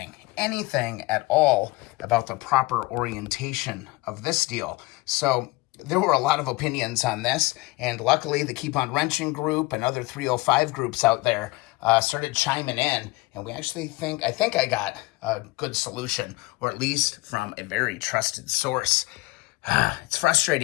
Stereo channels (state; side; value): quieter; right; 21.8 dB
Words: at all about the proper orientation of this deal. So there were a lot of opinions on this, and luckily the Keep On Wrenching group and other 305 groups out there started chiming in, and we actually I think I got a good solution, or at least from a very trusted source. It's